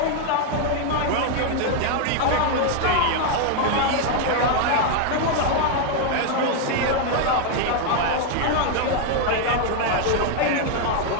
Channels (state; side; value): different; both; correlation 0.00